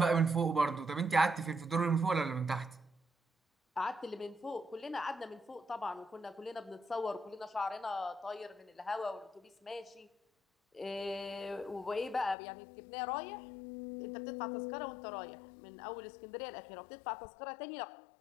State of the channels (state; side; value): drops out; right; at 12.4 s